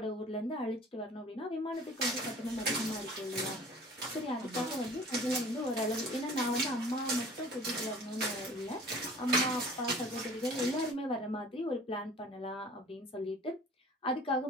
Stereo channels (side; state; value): both; normal; correlation 0.47